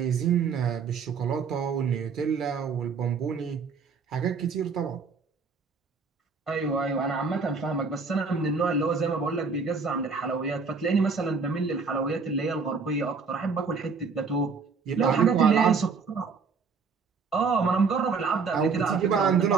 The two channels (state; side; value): quieter; left; 5.1 dB